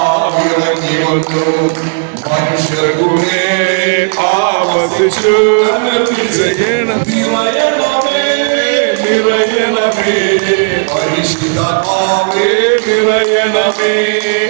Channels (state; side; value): silent; left; digital silence